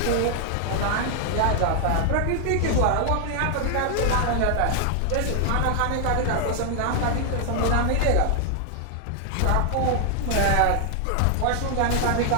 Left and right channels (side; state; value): both; different; correlation 0.00